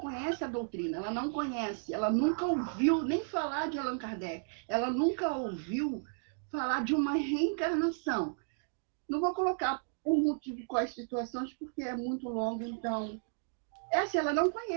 a doutrina, ela não conhece, ela nunca ouviu nem falar de Allan Kardec, ela nunca ouviu falar de uma reencarnação. Não vou colocar por motivo quais situações, porque é muito longo, então... ela não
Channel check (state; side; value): silent; left; digital silence